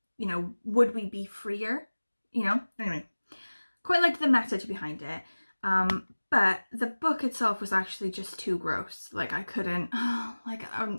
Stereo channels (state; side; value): inverted; both; correlation -1.00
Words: you know, would we be freer? You know? Anyway, quite liked the message behind it. But the book itself was actually just too gross. Like I couldn't,